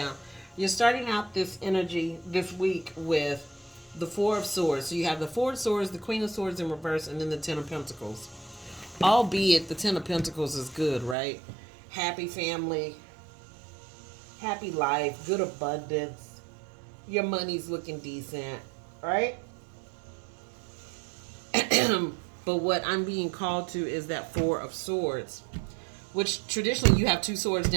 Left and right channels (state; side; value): drops out; left; at 11.2 s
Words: You're starting out this energy this week with the Four of Swords. So you have the Four of Swords, the Queen of Swords in reverse, and then the Ten of Pentacles. Albeit the Ten of Pentacles is good, right? Happy family, happy life, good abundance. Your money's looking decent, right? But what I'm being called to is that Four of Swords, which traditionally you have two swords